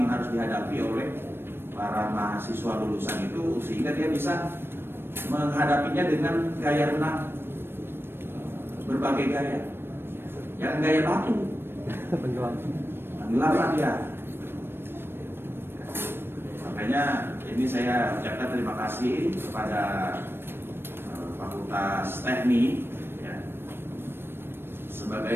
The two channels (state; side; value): late; left; 0.11 ms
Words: yang harus dihadapi oleh para mahasiswa lulusan itu, sehingga dia bisa menghadapinya dengan gaya renang berbagai gaya. Jangan gaya batu. Tenggelam dia. Makanya ini saya ucapkan terima kasih kepada Fakultas Teknik ya,